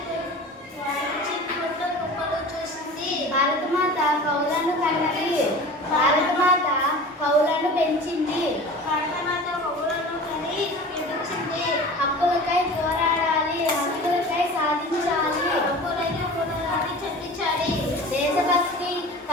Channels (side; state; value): both; normal; correlation 0.38